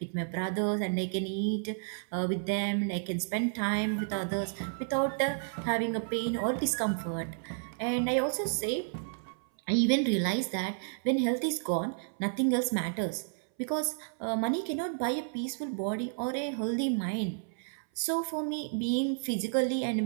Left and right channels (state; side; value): silent; left; 57 dB below the other